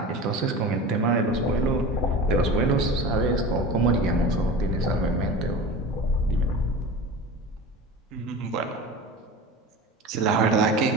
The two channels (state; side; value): normal; both; correlation 0.33